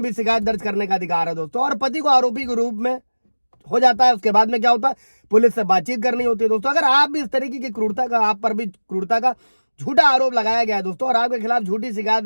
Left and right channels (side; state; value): both; inverted; correlation -1.00